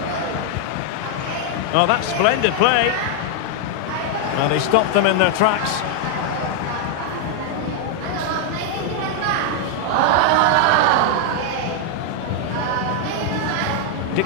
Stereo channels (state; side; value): different; both; correlation 0.00